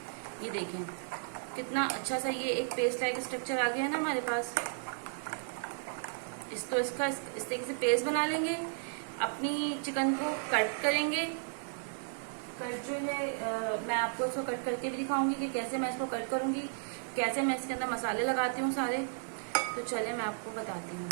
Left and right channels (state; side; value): silent; left; digital silence